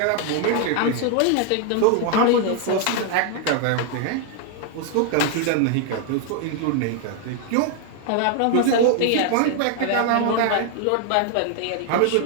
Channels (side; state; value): both; different; correlation 0.00